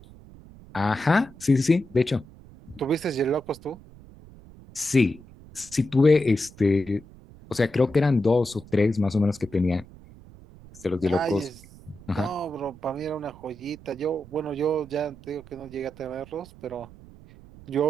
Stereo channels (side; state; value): right; noise; rumble, 21 dB below the sound